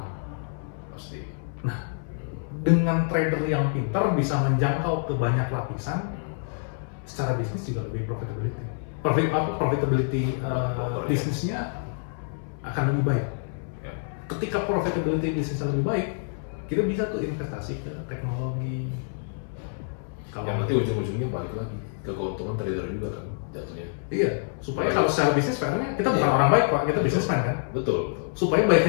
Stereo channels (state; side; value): silent; right; 60 dB below the other